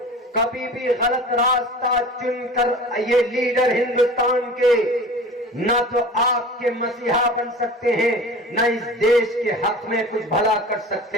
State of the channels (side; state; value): both; normal; correlation 0.39